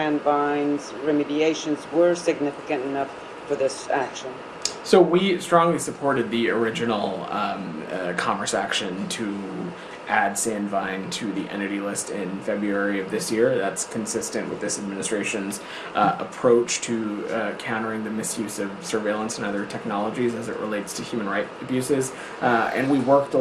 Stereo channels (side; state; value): both; identical; correlation 1.00